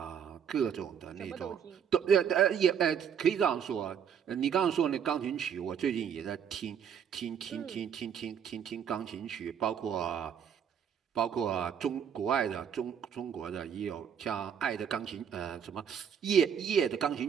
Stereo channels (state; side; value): quieter; left; 8.1 dB